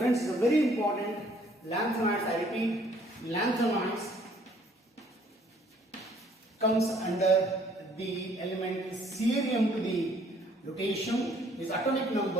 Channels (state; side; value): normal; both; correlation 0.61